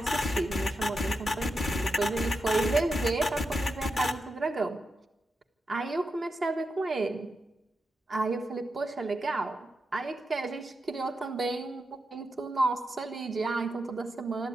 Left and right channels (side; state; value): both; normal; correlation 0.87